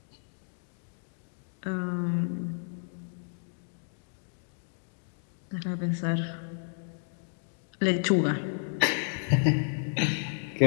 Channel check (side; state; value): right; silent; digital silence